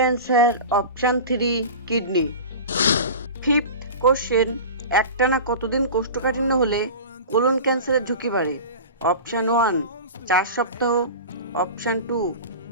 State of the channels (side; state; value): both; inverted; correlation -0.32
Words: answer option 3 kidney. Fifth question, একটানা কতদিন কোষ্ঠকাঠিন্য হলে কোলন ক্যান্সারের ঝুঁকি বাড়ে? অপশান 1 4 সপ্তাহ, অপশান 2